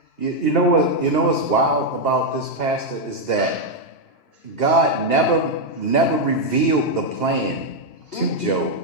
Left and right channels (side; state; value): right; late; 2.9 ms